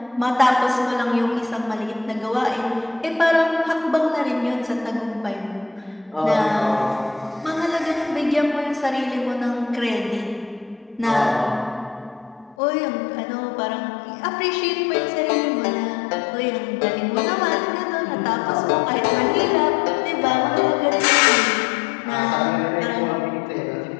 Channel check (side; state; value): right; drops out; at 12.6 s